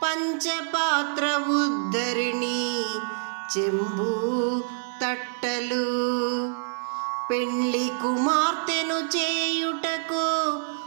పంచపాత్ర ఉద్ధరిణి, చెంబు తట్టలు, పెండ్లి కుమార్తెను చేయుటకు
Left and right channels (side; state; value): left; silent; 61 dB below the other